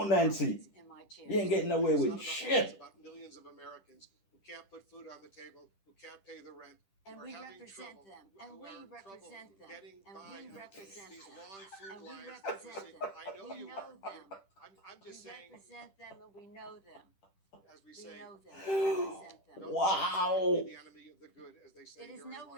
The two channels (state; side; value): late; right; 10 ms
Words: Nancy. In my chair. You ain't getting away It's with not about shit. It's about millions of Americans who can't put food on the table, who can't pay the rent. And we represent them. And we represent them. And we represent these them. long food And we lines. represent them. I know we you know are. them. I'm just we saying. represent them and we know them. As we We say. know them. We represent them. Don't Wow. be the enemy of the good, as they say. It is here in nowhere